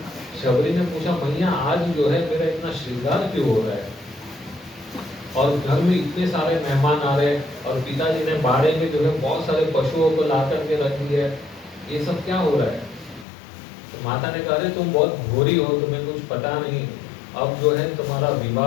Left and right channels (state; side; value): drops out; right; at 13.2 s